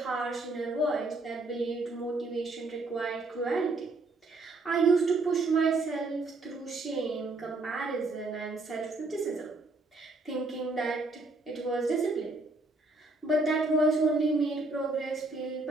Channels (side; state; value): left; quieter; 3.2 dB